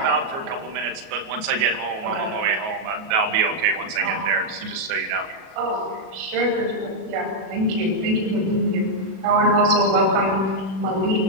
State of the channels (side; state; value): left; late; 37 ms